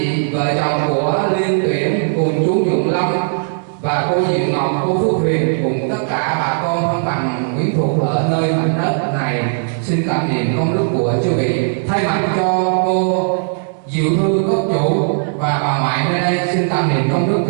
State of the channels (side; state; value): left; silent; digital silence